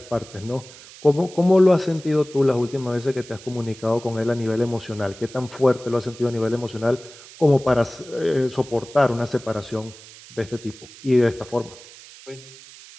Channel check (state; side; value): noise; right; hiss, 19 dB below the sound